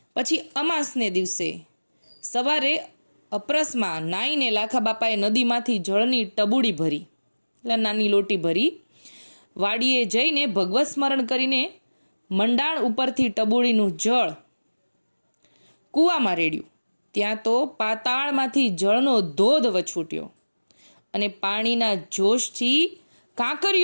પછી અમાસને દિવસે સવારે અપરસમાં નાઈને લાખા બાપાએ નદીમાંથી જળની ટબુડી ભરી, એટલે નાની લોટી ભરી, વાડીએ જઈને ભગવત સ્મરણ કરીને મંડાણ ઉપરથી ટબુડીનું જળ કૂવામાં રેડ્યું. ત્યાં તો પાતાળમાંથી જળનો ધોધ વછૂટ્યો અને પાણીના જોશથી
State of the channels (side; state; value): both; inverted; correlation -1.00